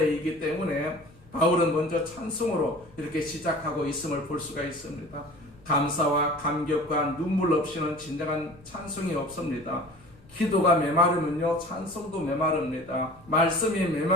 때문에 바울은 먼저 찬송으로 이렇게 시작하고 있음을 볼 수가 있습니다. 감사와 감격과 눈물 없이는 진정한 찬송이 없습니다. 기도가 메마르면요, 찬송도 메마릅니다. 말씀이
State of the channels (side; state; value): left; noise; rumble, 25 dB below the sound